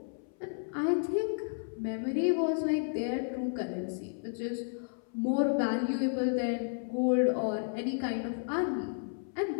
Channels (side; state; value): right; silent; 56 dB below the other